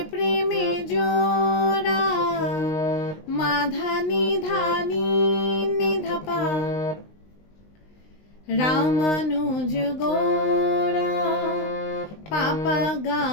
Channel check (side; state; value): right; late; 19 ms